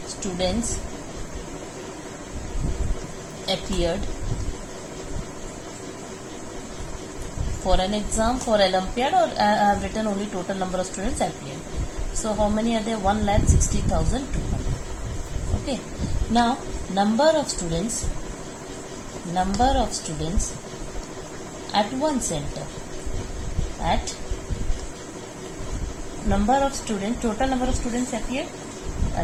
students appeared for an exam, for Olympiad, or I have written only total number of students appeared. So how many are there? 1,60,200. Okay. Now number of students at one center. At number of students, total number of students appeared.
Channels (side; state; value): both; identical; correlation 1.00